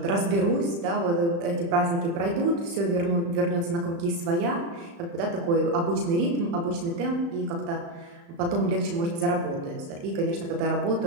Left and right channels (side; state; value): left; late; 35 ms